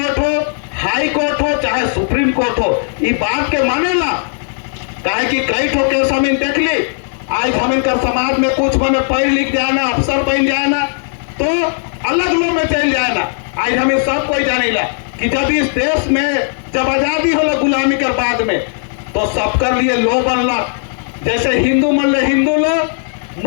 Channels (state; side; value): silent; right; digital silence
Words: हो, हाई कोर्ट हो, चाहे सुप्रीम कोर्ट हो, ये बात के मानेला। काहे कि कई ठो केस हम इन देख ली, आज हम इनकर समाज में कुछ बने पढ़ लिख जाए ना, अफसर बन जाए ना, तो अलग लोग में चल जाए ना। आज हमें सब कोई जाने ला कि जब इस देश में जब आजादी होला गुलामी के बाद में, तो सबकर लिए लो बनला। जैसे हिंदू मन ले हिंदू लो,